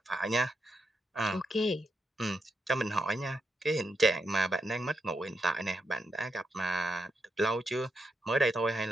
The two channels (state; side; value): normal; both; correlation 0.83